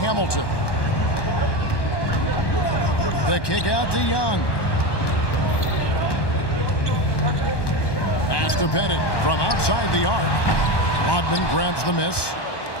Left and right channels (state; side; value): late; right; 1.1 ms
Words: The kick out to Young. Pass to Bennett from outside the arc. Rodman grabs the miss.